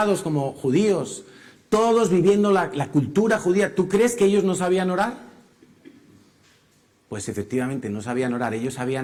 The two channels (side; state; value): both; identical; correlation 1.00